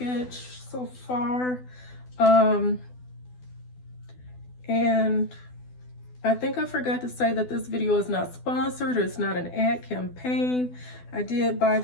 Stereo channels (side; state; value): right; late; 12 ms